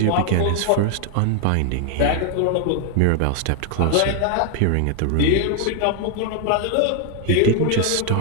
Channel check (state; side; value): different; both; correlation 0.00